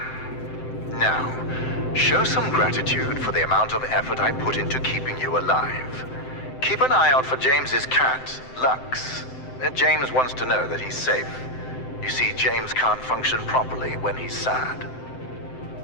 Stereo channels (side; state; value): right; late; 7.8 ms